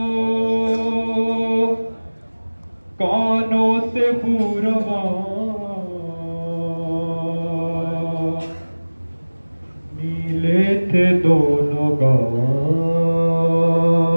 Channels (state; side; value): inverted; both; correlation -1.00